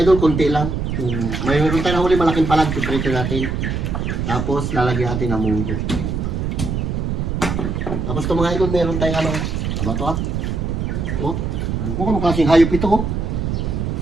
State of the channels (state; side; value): noise; right; rumble, 1 dB below the sound